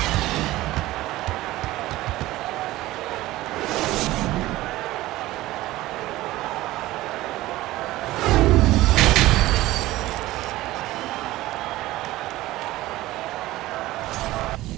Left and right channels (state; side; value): quieter; left; 17.1 dB